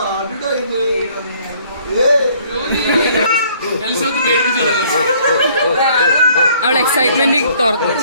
അവളെ എക്സൈറ്റ്മെന്റ് തുറന്നു.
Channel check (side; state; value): both; inverted; correlation -0.61